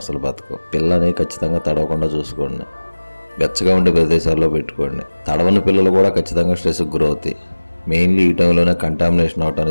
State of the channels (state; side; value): inverted; both; correlation -1.00